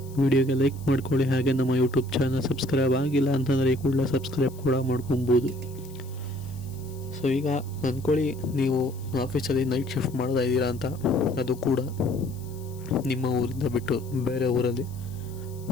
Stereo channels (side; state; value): left; noise; hiss, 23 dB below the sound